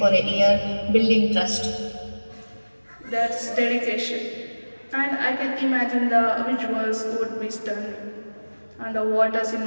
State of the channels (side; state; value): both; inverted; correlation -1.00